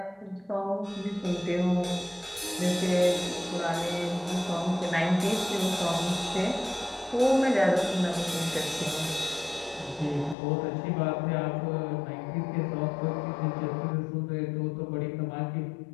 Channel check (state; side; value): drops out; right; at 10.4 s